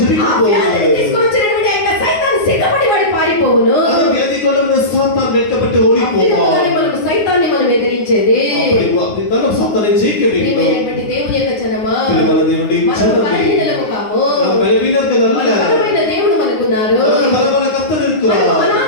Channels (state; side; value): late; right; 9.5 ms